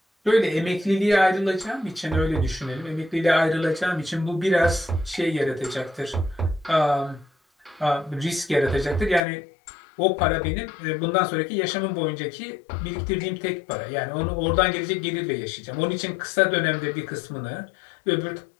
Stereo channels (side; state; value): right; drops out; at 9.2 s